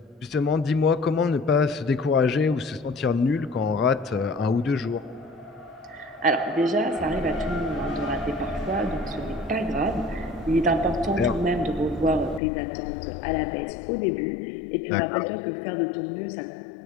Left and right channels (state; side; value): drops out; right; at 12.4 s